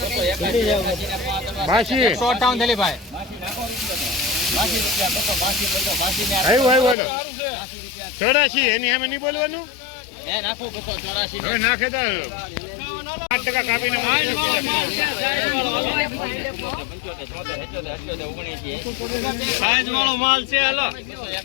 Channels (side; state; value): right; drops out; at 7.0 s